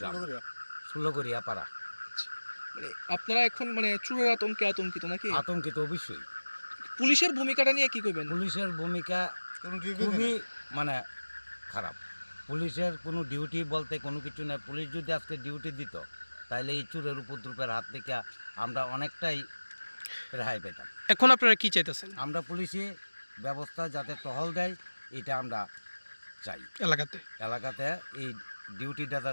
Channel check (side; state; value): both; inverted; correlation -1.00